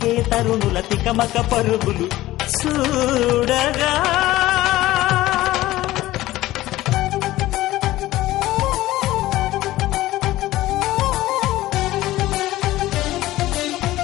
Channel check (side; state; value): right; quieter; 16.4 dB